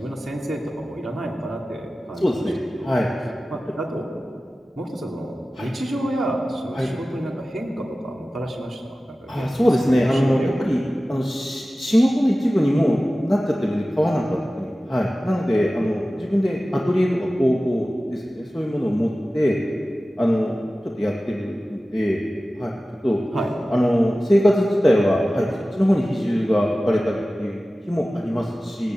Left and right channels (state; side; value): normal; both; correlation 0.96